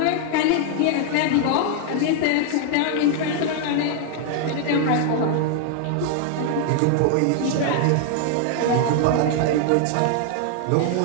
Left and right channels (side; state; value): both; different; correlation 0.00